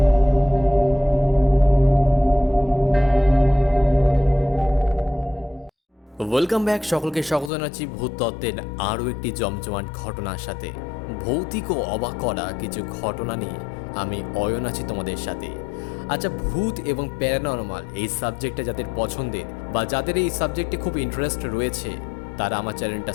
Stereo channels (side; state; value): right; drops out; at 7.5 s